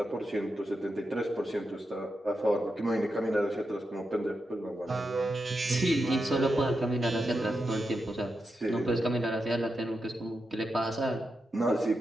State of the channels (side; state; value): both; normal; correlation 0.87